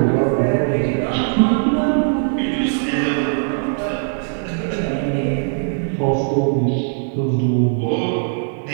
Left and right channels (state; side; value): silent; left; digital silence